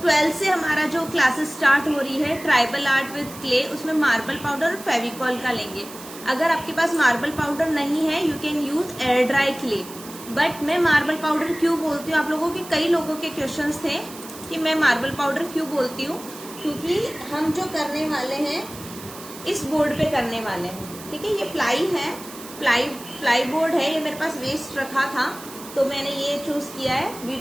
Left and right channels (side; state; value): right; noise; hiss, 15 dB below the sound